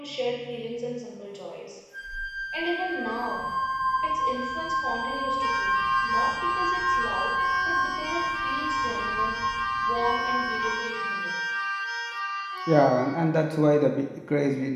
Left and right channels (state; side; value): identical; both; correlation 1.00